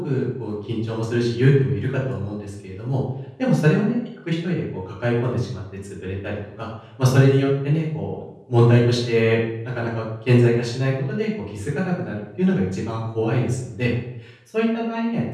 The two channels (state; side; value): identical; both; correlation 1.00